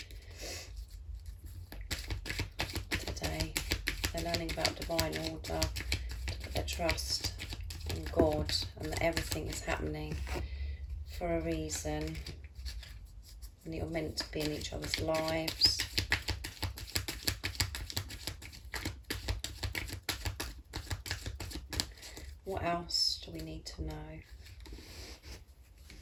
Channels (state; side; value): identical; both; correlation 1.00